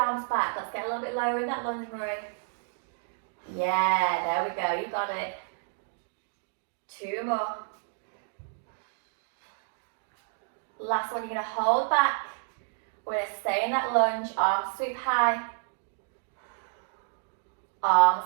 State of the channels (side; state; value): left; silent; digital silence